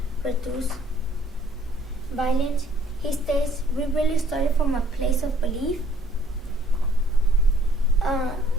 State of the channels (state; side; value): normal; both; correlation 0.61